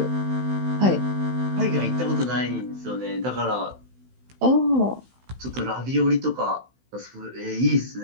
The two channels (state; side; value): late; left; 16 ms